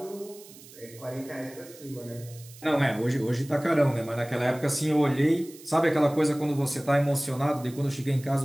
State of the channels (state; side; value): noise; right; hiss, 20 dB below the sound